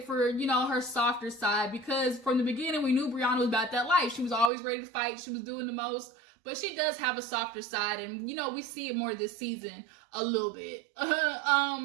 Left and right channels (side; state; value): left; drops out; at 4.5 s